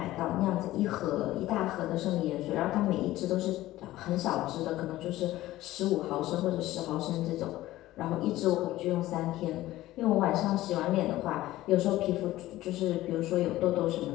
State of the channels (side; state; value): right; quieter; 16.0 dB